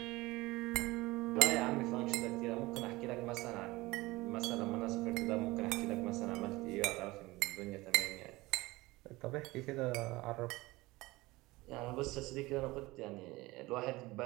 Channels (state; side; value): quieter; left; 20.6 dB